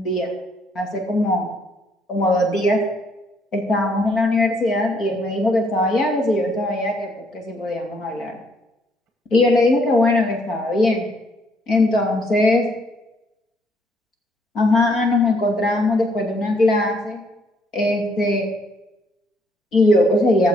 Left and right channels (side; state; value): both; normal; correlation 0.68